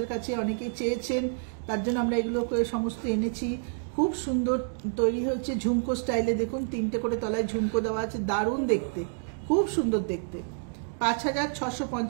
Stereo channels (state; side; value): silent; left; digital silence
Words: কাছে, অনেকেই চেয়েছেন, তার জন্য আমরা এগুলোকে সমস্ত এনেছি। খুব সুন্দর তৈরি হয়েছে ঝুমকো স্টাইলে, দেখুন 3টে করে তলায় ঝুমকো দেওয়া আছে, দারুণ দেখতে, খুব সুন্দর দেখতে।